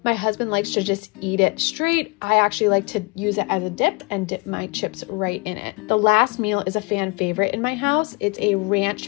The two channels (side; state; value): right; quieter; 28.6 dB